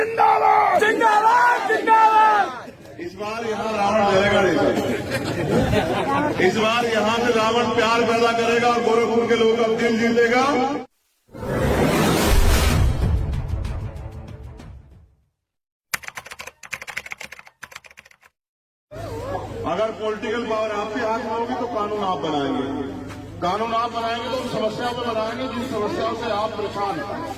जिंदाबाद जिंदाबाद। इस बार यहाँ रावण जलेगा नहीं। इस बार यहाँ से रावण प्यार पैदा करेगा और गोरखपुर के लोगों का दिल जीतेगा। अगर पॉलिटिकल पावर आपके हाथ में होगी तो कानून आप बनाएंगे। कानून आप बनाएंगे तो उन समस्याओं को बनाएंगे जिन समस्याओं से आप परेशान हैं।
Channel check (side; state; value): both; identical; correlation 1.00